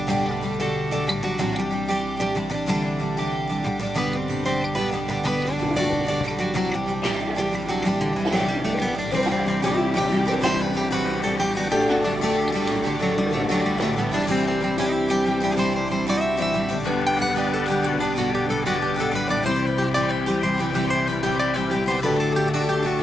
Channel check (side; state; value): right; noise; hum, 14 dB below the sound